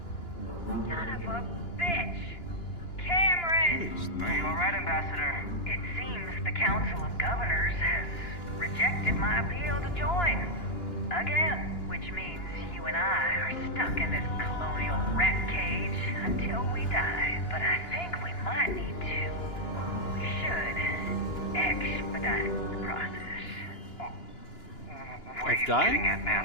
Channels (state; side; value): late; right; 2.9 ms